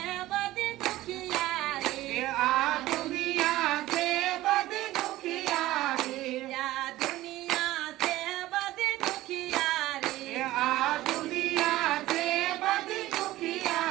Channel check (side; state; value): left; quieter; 16.4 dB